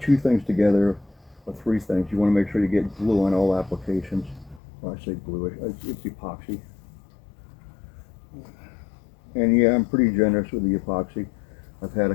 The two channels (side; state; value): right; drops out; at 4.6 s